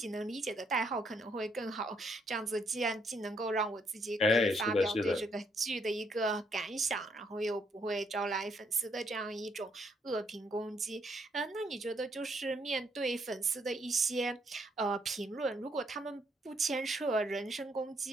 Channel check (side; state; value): both; normal; correlation 0.72